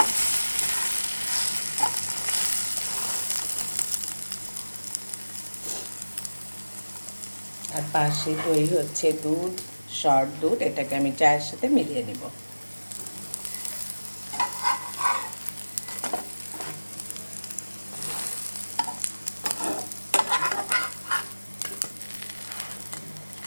আর পাশে দই হচ্ছে দুধ, শর্ট দুধ, এটাকে আমি চায়ের সাথে মিলিয়ে নিব।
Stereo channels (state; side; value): inverted; both; correlation -1.00